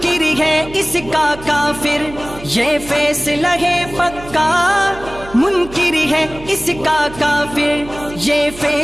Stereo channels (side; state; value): right; noise; hum, 16 dB below the sound